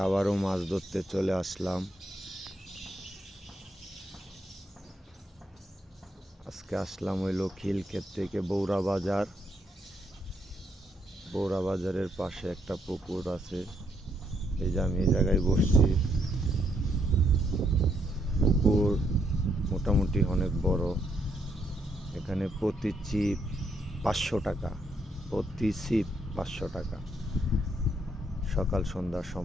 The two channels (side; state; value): both; normal; correlation 0.75